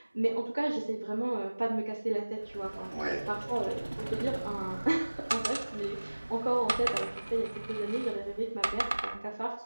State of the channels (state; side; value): inverted; both; correlation -1.00